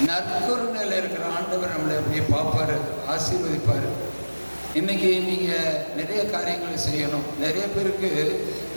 நற்கருணையில் இருக்கிற ஆண்டவர் நம்மளை அப்படியே பார்ப்பாரு, ஆசீர்வதிப்பார். இன்னைக்கு நீங்கள் நிறைய காரியங்களை செய்யணும். நிறைய பேருக்கு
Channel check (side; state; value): both; inverted; correlation -1.00